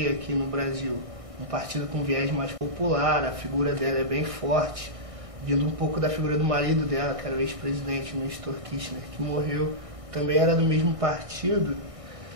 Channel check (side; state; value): left; late; 1.6 ms